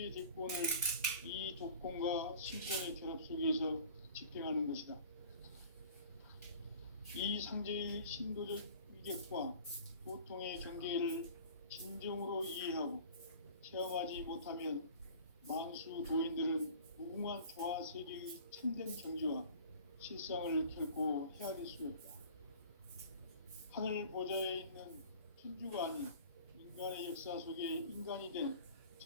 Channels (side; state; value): both; inverted; correlation -0.44